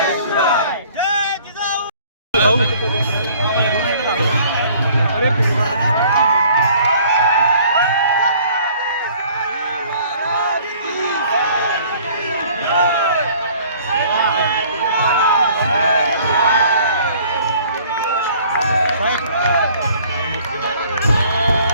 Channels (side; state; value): both; inverted; correlation -0.55